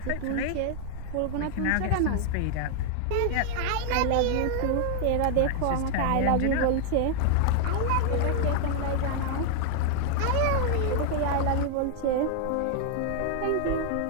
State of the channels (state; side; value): different; both; correlation 0.00